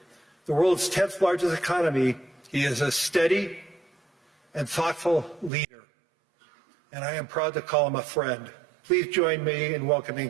the world's 10th largest economy, he is a steady and thoughtful leader, and I am proud to call him a friend. Please join me in welcoming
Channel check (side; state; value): left; drops out; at 5.5 s